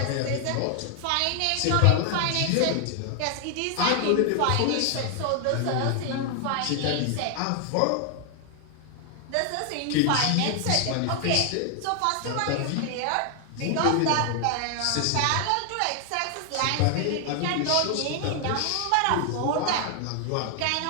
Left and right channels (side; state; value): both; different; correlation 0.00